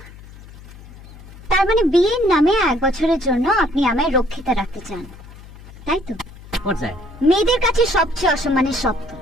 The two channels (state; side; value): noise; left; hum, 18 dB below the sound